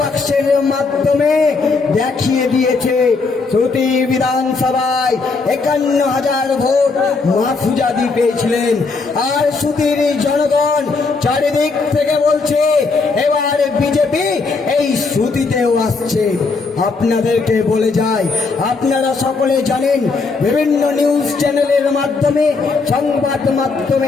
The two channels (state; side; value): quieter; right; 4.3 dB